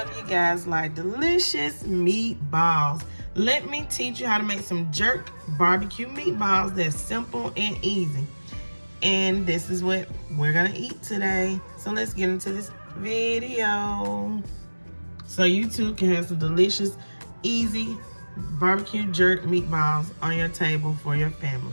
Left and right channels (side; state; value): both; inverted; correlation -1.00